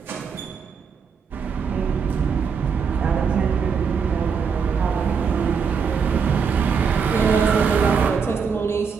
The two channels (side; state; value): left; quieter; 6.1 dB